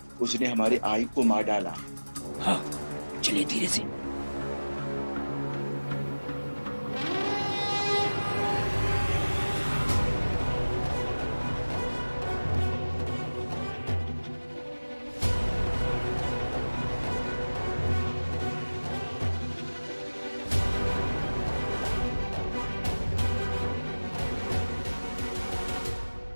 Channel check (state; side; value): inverted; both; correlation -1.00